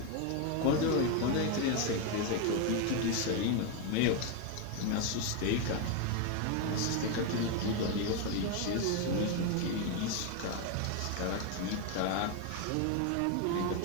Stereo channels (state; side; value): different; both; correlation 0.02